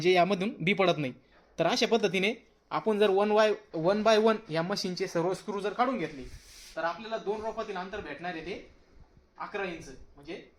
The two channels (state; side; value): identical; both; correlation 1.00